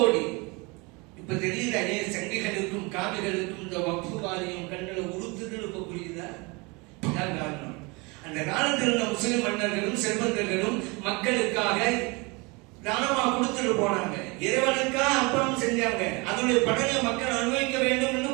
இப்ப தெரியுதா ஏன் சங்கிகளுக்கும் காவிகளுக்கும் இந்த வக்ஃபு வாரியம் கண்களை உறுத்துதல் இப்ப புரியுதா? காரணம், அந்த காலத்தில் இருந்த முஸ்லிம் மன்னர்களும் செல்வந்தர்களும் மக்களுக்காக தானமா கொடுத்துட்டு போனாங்க, இறைவனுக்காக அர்ப்பணம் செஞ்சாங்க, அதனுடைய பலனை மக்கள் அனுபவிக்க வேண்டும் என்று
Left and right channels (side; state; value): left; quieter; 27.5 dB